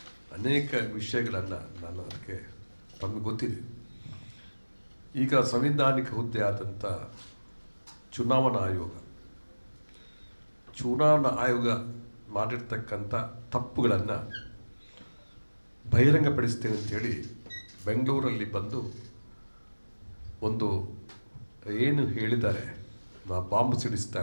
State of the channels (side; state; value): both; inverted; correlation -1.00